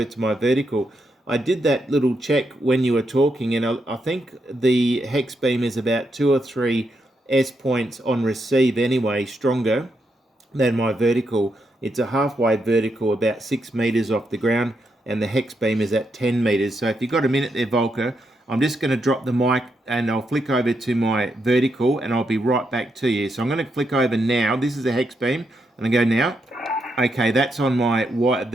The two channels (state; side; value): normal; both; correlation 0.81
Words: to my vertical. I did that little check when you were talking, and I think the Hexbeam is about 2 or 3 S points on receive anyway, stronger than my vertical. It's a halfway vertical, about 6 meters off the ground, and the Hexbeam is at 10 meters. So if you've got a minute there, Volker, I'm just going to drop the mic and I'll flick over to my vertical and I'll be right back to you. So I'm going to flick over now. This is a Hexbeam, and I go now. Okay, that's on